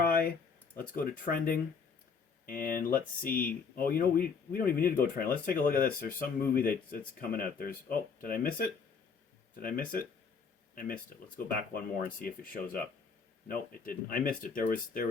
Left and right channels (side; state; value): right; quieter; 5.5 dB